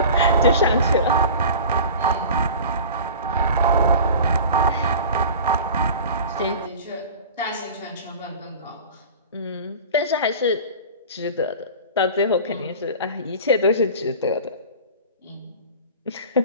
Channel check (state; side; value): inverted; both; correlation -0.38